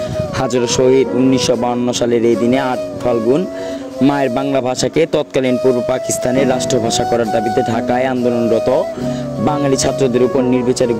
হাজারো শহীদ। ১৯৫২ সালের এই দিনে ৮ ফাল্গুন মায়ের বাংলা ভাষাকে তৎকালীন পূর্ব পাকিস্তানের রাষ্ট্রভাষা করার দাবিতে ঢাকায় আন্দোলনরত বাঙালি ছাত্রদের উপর নির্বিচারে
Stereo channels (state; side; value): identical; both; correlation 1.00